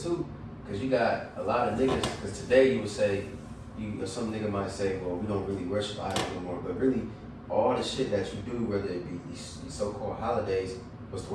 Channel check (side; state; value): both; identical; correlation 1.00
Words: because you got a lot of niggas, because today you would say, some nigga might say, well, we don't really worship idols anymore, but really, all the shit that you do, whether it be these so-called holidays, what's the